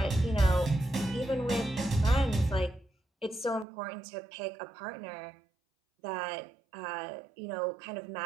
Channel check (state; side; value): drops out; left; at 3.7 s